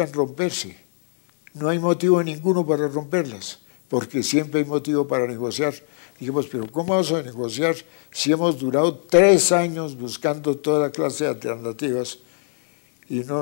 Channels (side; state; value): right; silent; digital silence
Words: romperse, no hay motivo ninguno para romperlas, porque siempre hay motivo para negociar. Dijimos, pero ¿cómo vamos a negociar si hemos durado 3 años buscando toda clase de alternativas y